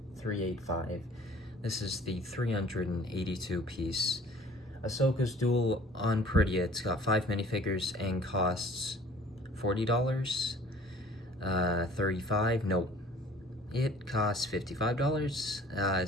This is the 382 piece Ahsoka's Duel on Perida. It's got 5 minifigures and costs $40, $35, nope. It costs $55,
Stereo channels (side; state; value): both; normal; correlation 0.51